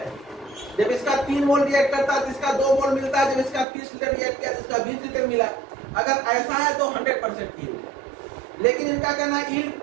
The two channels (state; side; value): drops out; left; at 3.7 s